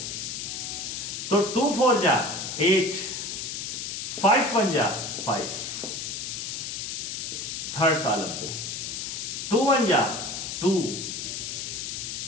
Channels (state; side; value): noise; left; hiss, 5 dB below the sound